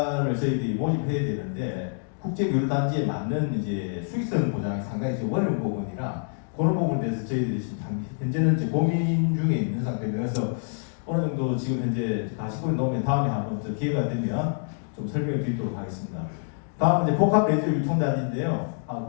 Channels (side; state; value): right; silent; digital silence